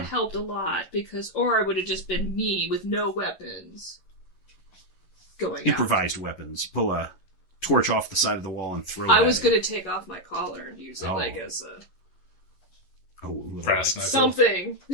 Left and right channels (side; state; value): right; late; 11 ms